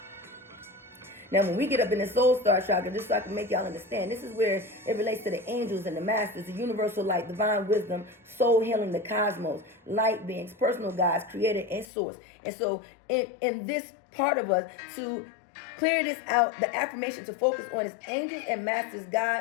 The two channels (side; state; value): right; drops out; at 11.9 s